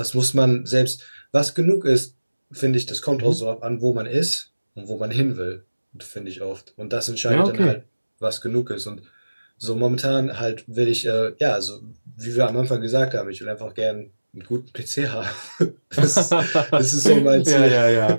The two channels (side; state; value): both; inverted; correlation -1.00